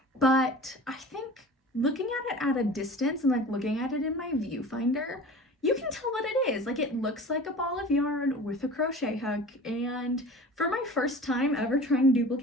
but I think looking at it at a distance and like looking at it in my viewfinder, you can tell what it is. Like, it looks like a ball of yarn with a crochet hook, and for my first time ever trying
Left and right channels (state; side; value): normal; both; correlation 0.39